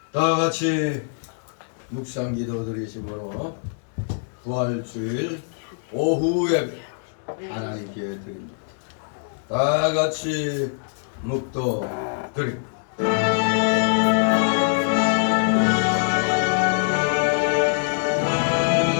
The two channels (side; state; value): right; silent; digital silence